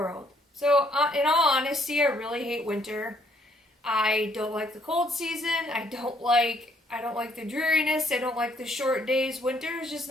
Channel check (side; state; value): both; normal; correlation 0.67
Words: So in all honesty, I really hate winter. I don't like the cold season. I don't like the dreariness. I don't like the short days. Winter is just